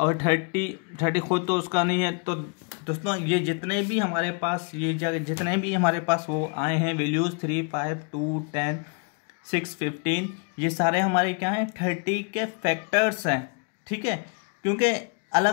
30 खुद तो उसका नहीं है। तो दोस्तों, ये जितने भी हमारे पास जितने भी हमारे पास वो आए हैं वैल्यूज़ 3, 5, 2, 10, 6, 15, ये सारे हमारे क्या हैं, 30 के फैक्टर्स हैं। ठीक है, क्योंकि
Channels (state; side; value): quieter; right; 35.1 dB